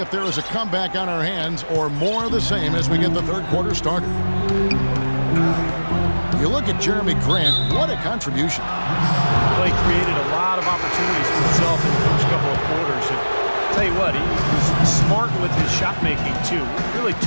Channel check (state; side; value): inverted; both; correlation -1.00